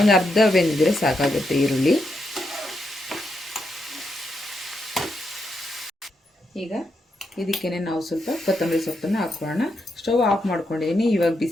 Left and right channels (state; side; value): normal; both; correlation 0.82